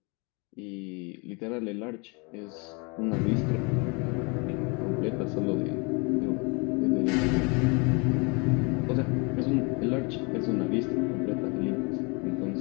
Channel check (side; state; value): right; quieter; 31.0 dB